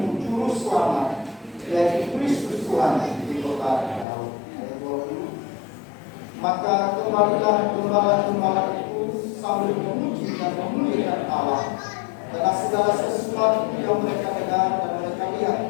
juru selamat, yaitu Kristus Tuhan di kota Daud. Ayat 20. Maka kembalilah gembala-gembala itu sambil memuji dan memuliakan Allah, karena segala sesuatu yang mereka dengar dan mereka lihat,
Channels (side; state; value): right; drops out; at 4.0 s